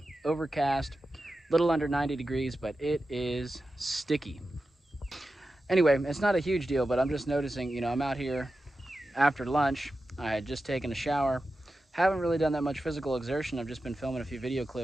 overcast, little under 90 degrees, but it is sticky. Anyway, it's not a huge deal, but I'm just noticing, you know, I'm out here after lunch. I had just taken a shower. Haven't really done that much physical exertion. I've just been filming a few video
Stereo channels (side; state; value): both; normal; correlation 0.92